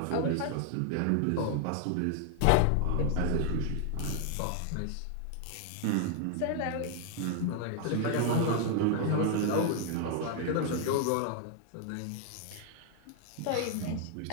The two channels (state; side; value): different; both; correlation 0.00